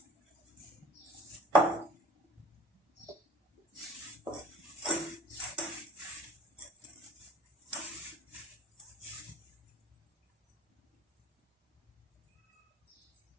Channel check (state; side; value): normal; both; correlation 0.49